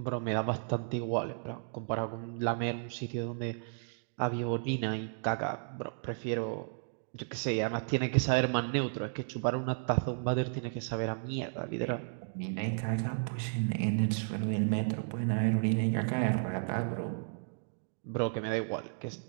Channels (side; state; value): left; silent; digital silence